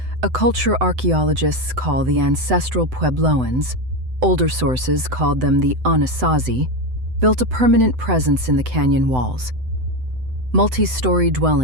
a culture archaeologists call the ancestral Puebloans, older sources called them the Anasazi, built a permanent presence in the canyon walls. Multi-story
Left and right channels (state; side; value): late; left; 7.9 ms